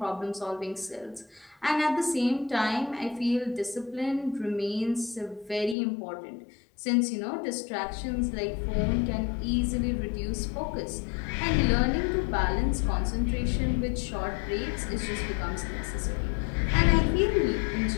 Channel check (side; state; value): right; drops out; at 5.8 s